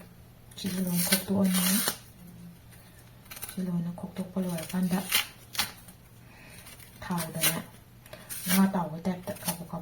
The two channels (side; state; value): both; identical; correlation 1.00